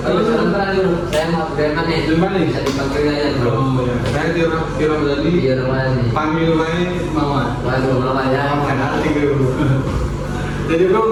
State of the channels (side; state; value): both; identical; correlation 1.00